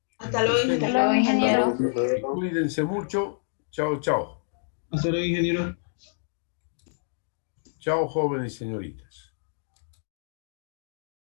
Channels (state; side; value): silent; right; digital silence